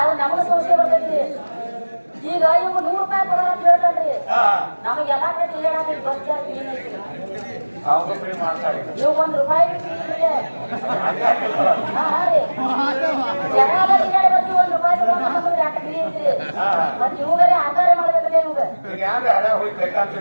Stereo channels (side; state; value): both; inverted; correlation -1.00